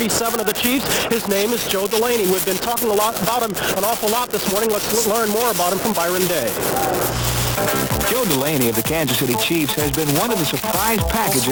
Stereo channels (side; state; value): both; identical; correlation 1.00